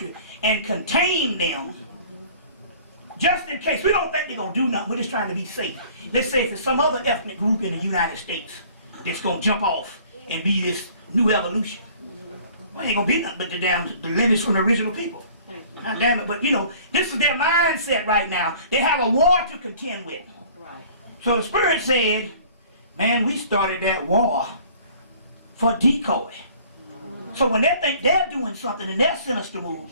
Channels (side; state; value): both; inverted; correlation -0.51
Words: and contain them just in case. We don't think they're going to do nothing. We're just trying to be safe. Let's say if it's some other ethnic group in the United States that's going to jump off and be this new evolution. Well, ain't going to be nothing but the lineage from the original people. God damn it. But, you know, this is their mindset right now. They have a war to contend with. Right. So the Spirit said, man, we started that war for decoy. So when they think they're doing something and they're sinister